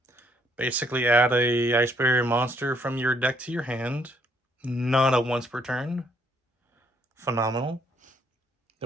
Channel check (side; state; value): both; normal; correlation 0.69